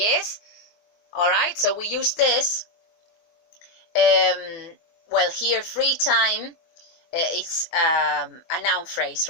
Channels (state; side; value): late; right; 24 ms